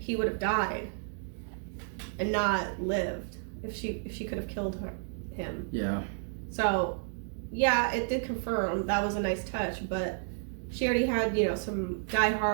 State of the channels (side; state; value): left; silent; digital silence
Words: would have died and not lived. If she could have killed him. Yeah. So, yeah, it did confirm that was a nice touch, but she already had, some